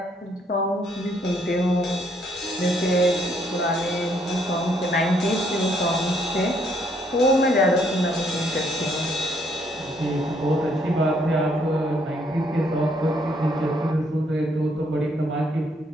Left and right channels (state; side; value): normal; both; correlation 0.69